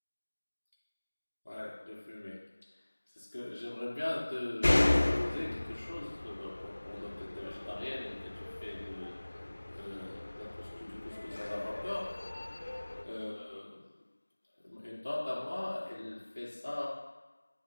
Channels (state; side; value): inverted; both; correlation -1.00